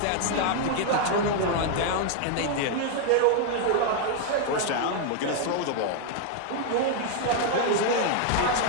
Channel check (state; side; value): different; both; correlation 0.00